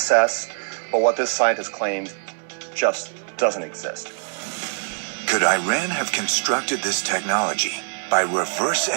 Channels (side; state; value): left; silent; 63 dB below the other